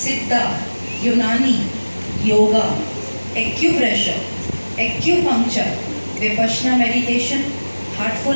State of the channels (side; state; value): both; inverted; correlation -1.00